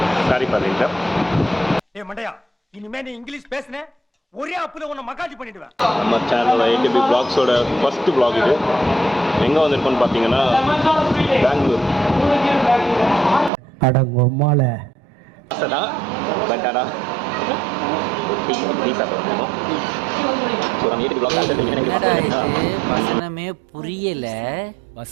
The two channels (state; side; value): drops out; left; at 13.5 s